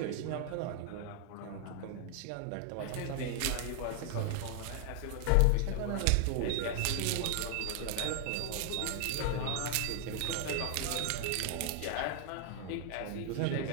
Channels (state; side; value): different; both; correlation 0.00